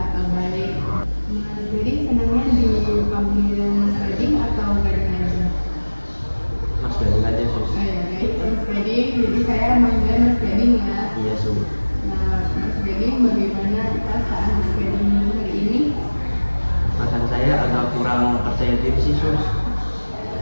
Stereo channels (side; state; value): both; inverted; correlation -1.00